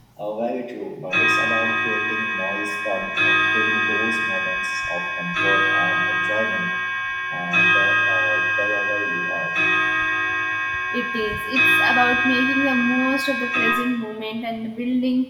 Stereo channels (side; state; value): both; identical; correlation 1.00